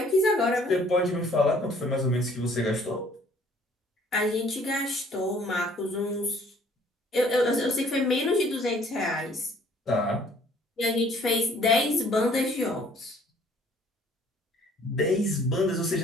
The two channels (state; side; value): normal; both; correlation 0.59